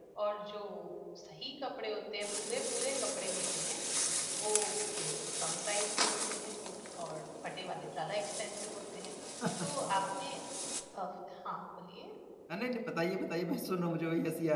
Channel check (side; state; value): both; identical; correlation 1.00